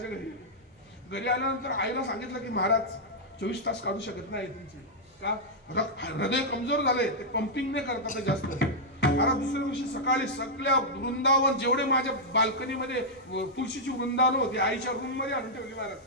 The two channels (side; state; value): both; normal; correlation -0.07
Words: घरी आल्यानंतर आईला सांगितलं की महाराज 24 तास काढू शकत नाही तुमची. का? हृदय कमजोर झाले, ते पंपिंग नाही करतात जास्त. आता दुसऱ्या दिवशी सकाळी सगळ्या वृंदावन, जेवढे माझ्या बाल्कनीमध्ये तुळशीची वृंदावन होती, आईच्या रूम मध्ये आणून ठेवली महाराज.